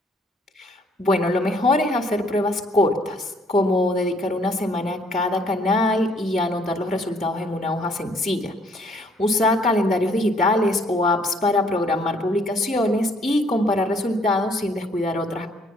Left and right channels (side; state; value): both; normal; correlation 0.63